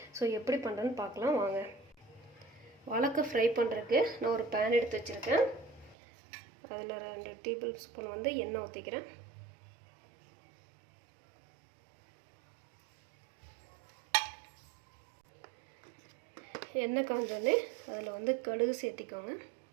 ஸோ எப்படி பண்ணுறேன்னு பார்க்கலாம் வாங்க. வாழைக்காய் ஃப்ரை பண்ணுறதுக்கு நான் ஒரு பேன் எடுத்து வச்சுருக்கேன். அதில் 2 டேபிள் ஸ்பூன் எண்ணெய் ஊற்றிக்கிறேன். எண்ணெய் காஞ்சோடனே அதில் கடுகு சேர்த்திக்கோங்க.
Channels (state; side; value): drops out; left; at 6.0 s